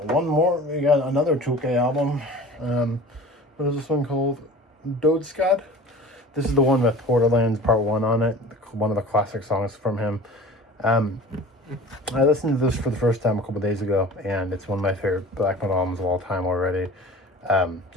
one more. We got another Tolke album. What is this one called? Dodeskad. This is the one with Borderlands Part 1 on it. One of the classic songs from him. I listened to this for the first time a couple days ago, and it's one of my favorite black metal albums of all time already.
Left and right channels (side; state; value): both; normal; correlation 0.40